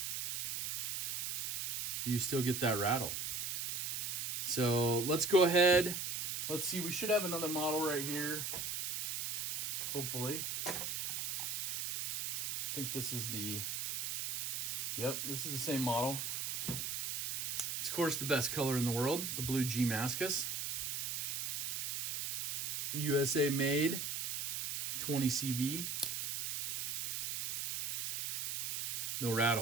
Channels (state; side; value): noise; right; hiss, 2 dB below the sound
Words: Do you still get that rattle? So let's go ahead. Let's see, we should have another model right here. Hopefully. I think this is this is the same model. It's of course the best color in the world, the blue G Mascus. USA made, 20 CV. No